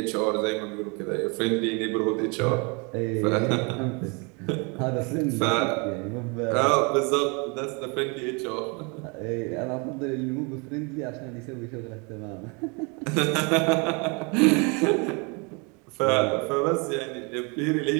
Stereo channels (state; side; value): quieter; left; 31.4 dB